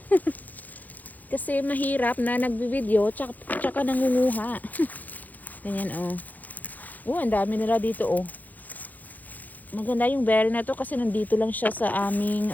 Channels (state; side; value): late; right; 0.082 ms